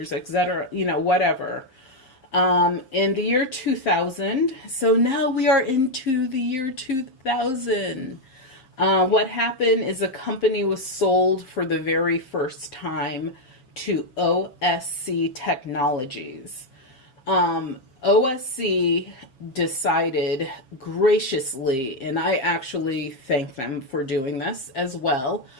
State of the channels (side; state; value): right; late; 7.6 ms